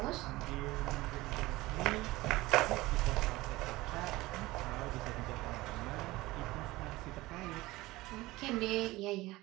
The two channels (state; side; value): quieter; left; 19.4 dB